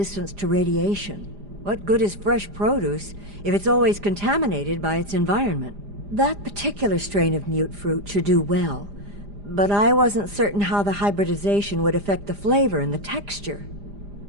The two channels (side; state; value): left; late; 4.9 ms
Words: to radiation. What good is fresh produce if it's always contaminated by its environment? That particular strain of mute fruit should do well, but I wasn't certain how the hybridization would affect the flavor and the texture.